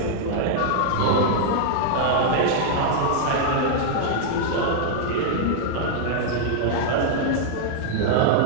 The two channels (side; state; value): both; different; correlation -0.01